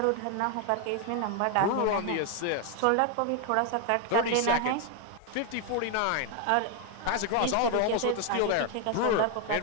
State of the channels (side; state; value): both; different; correlation 0.01